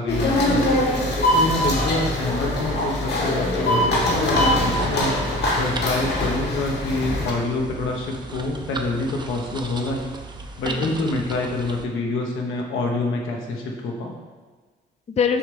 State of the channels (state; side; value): normal; both; correlation 0.41